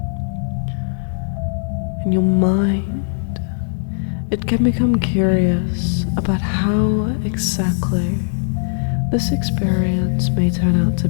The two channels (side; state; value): right; silent; digital silence